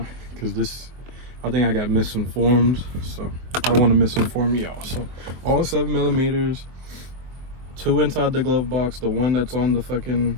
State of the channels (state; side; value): late; left; 23 ms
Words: this, I think I got misinformed. So I don't want to misinform y'all. So all 7mm, 2 inside the glove box. The one that's on the fucking